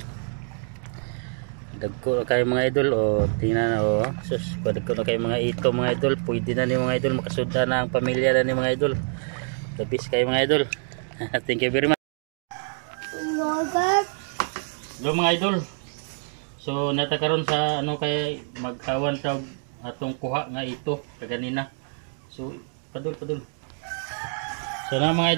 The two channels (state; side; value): silent; left; 55 dB below the other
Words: Dagko na kayo mga idol tingnan na sus dagko na kayo mga ito mga idol, pwede na ni mga idol makasuda na ang pamilya na ni mga idol. The best kayo mga idol. Thank you very much. Hello mga idol. So natakaron sa ano kay magkawan sa atong kuha nga ito kaganina. So padul. So na mga